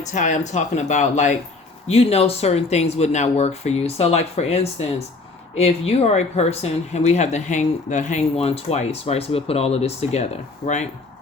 tie, I'm talking about like, you know, certain things would not work for you. So like, for instance, if you are a person, and we have the hang one twice, right? So we'll put all of this together, right?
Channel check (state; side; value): quieter; right; 3.6 dB